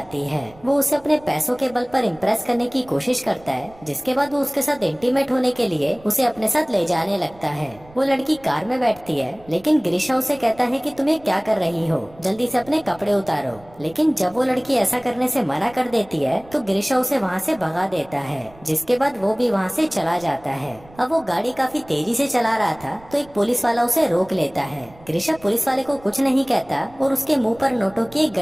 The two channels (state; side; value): noise; right; rumble, 24 dB below the sound